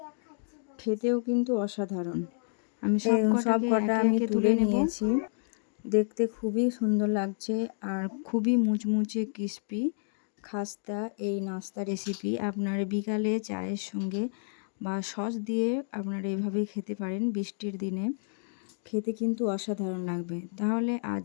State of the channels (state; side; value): silent; right; digital silence